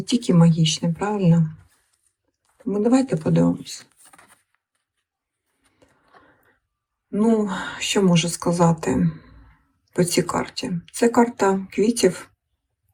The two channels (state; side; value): identical; both; correlation 1.00